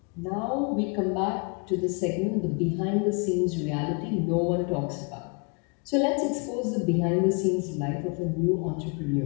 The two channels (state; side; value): quieter; right; 34.4 dB